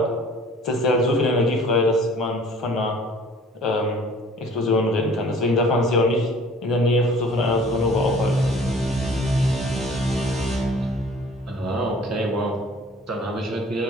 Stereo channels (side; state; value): both; normal; correlation 0.51